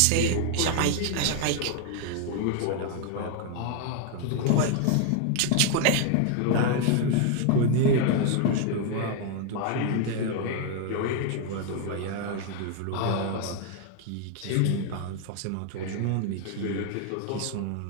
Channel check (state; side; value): different; both; correlation 0.00